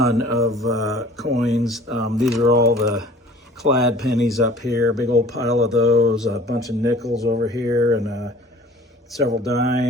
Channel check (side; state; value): both; normal; correlation 0.48